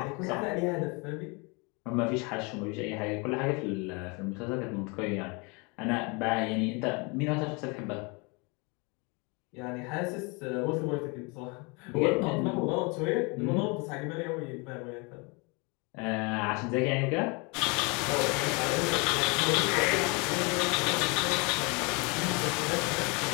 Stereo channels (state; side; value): quieter; right; 29.9 dB